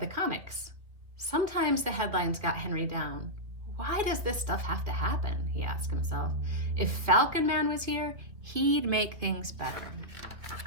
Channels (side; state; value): left; late; 2.5 ms